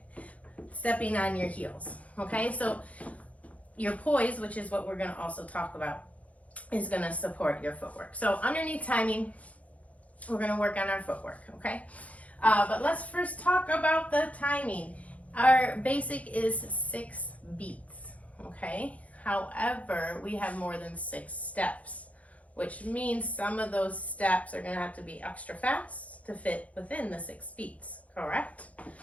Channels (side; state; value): right; late; 0.067 ms